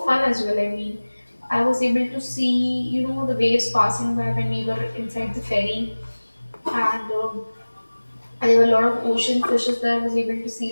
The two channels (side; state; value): both; inverted; correlation -1.00